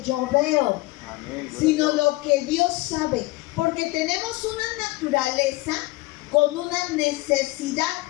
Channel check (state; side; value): quieter; right; 21.0 dB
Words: yo veo, sino lo que Dios sabe, porque tenemos una naturaleza con una necesidad,